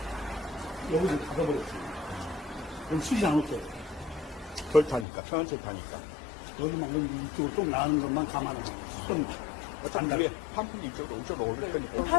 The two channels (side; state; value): right; drops out; at 5.1 s